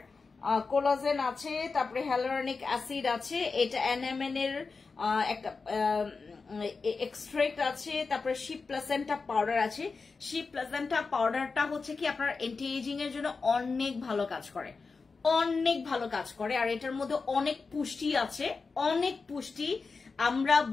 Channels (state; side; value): quieter; right; 4.5 dB